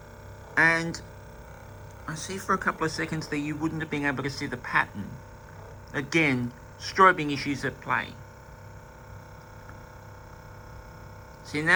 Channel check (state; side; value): identical; both; correlation 1.00